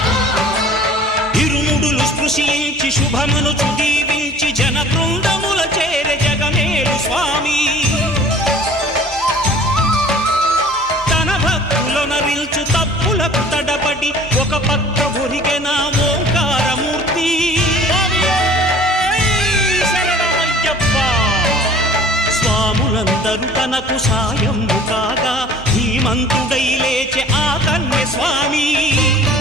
ఇరుముడులు స్పృశించి శుభమనుచు దీవించి జన బృందముల చేరే జగమేలు స్వామి తన భక్తులనరిల్చు తప్పులకు తడబడి ఒక పక్క ఒరిగెన ఓంకారమూర్తి స్వాములందరూ తనకు సాయము కాగా ధీమంతుడై లేచే ఆ కన్య స్వామి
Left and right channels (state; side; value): normal; both; correlation 0.48